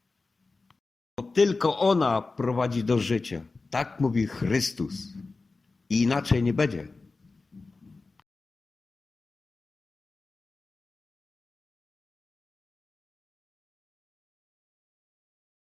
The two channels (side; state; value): right; quieter; 3.8 dB